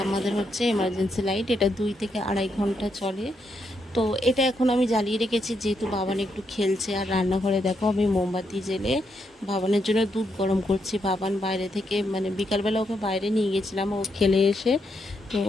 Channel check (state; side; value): normal; both; correlation 0.80